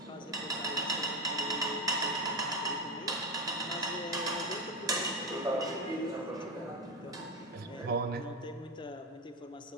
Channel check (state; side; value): normal; both; correlation 0.15